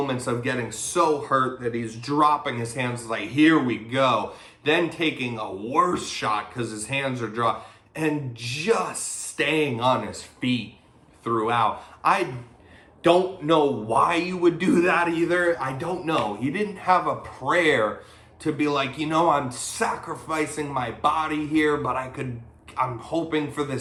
of getting so hurt that he's dropping his hands like, here we go. Then taking a worse shot because his hands are dropped and just staying on his feet throughout. I don't know why you would do that either. I don't know. He didn't have a prayer to be like, I'm sacrificing my body here, but I'm hoping for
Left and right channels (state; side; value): identical; both; correlation 1.00